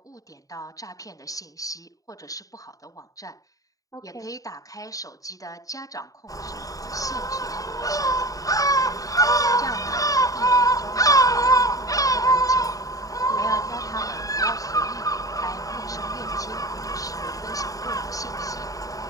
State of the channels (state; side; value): late; right; 0.17 ms